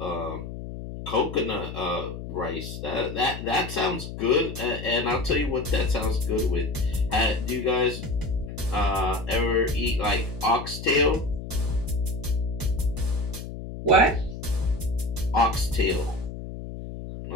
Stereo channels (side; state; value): left; noise; hum, 9 dB below the sound